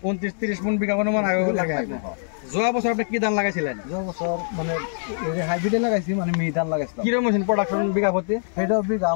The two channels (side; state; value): right; silent; digital silence